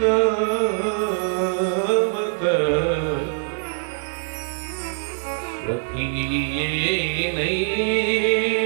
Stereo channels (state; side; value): silent; left; digital silence